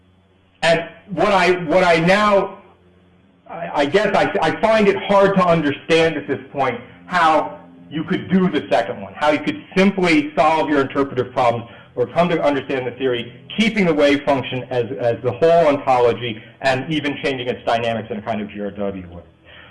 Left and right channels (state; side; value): identical; both; correlation 1.00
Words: what I now, I guess I find it hard to understand at this point how you could do the second one, how you could simply solve your interpretive problems or come to understand the theory, keeping the wave function as the whole ontology and even changing its dynamics in a kind of GRW way.